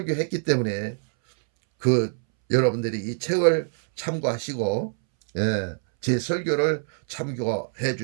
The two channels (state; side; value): silent; left; 62 dB below the other